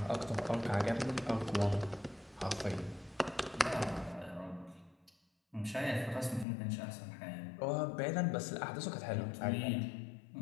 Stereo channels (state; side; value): drops out; right; at 6.5 s